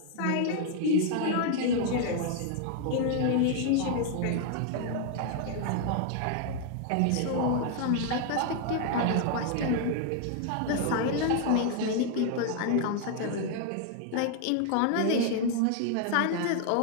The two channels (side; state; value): both; different; correlation 0.00